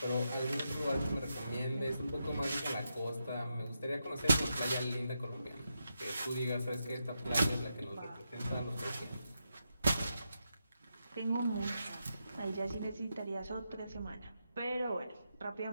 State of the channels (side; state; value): both; inverted; correlation -0.85